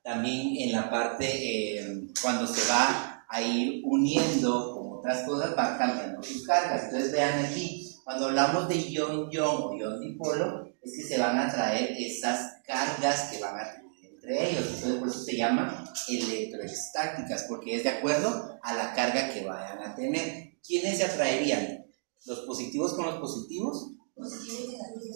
también en la parte, cuando se va a ir uniendo con otras cosas, va cambiando sus cargas? Entonces vean aquí, cuando hablamos de ion-ion o ion-dipolo, es que se van a traer esas cargas que van a tener entre ellos. Entonces por eso se llaman electroestáticas, porque es de acuerdo a la carga que vayan a tener. ¿Quiénes se atraerían? ¿Los positivos con los positivos?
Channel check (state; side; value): silent; left; digital silence